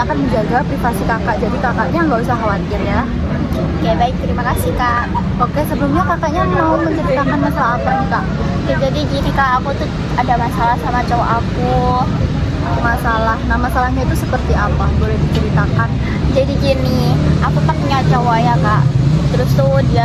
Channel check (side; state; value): both; identical; correlation 1.00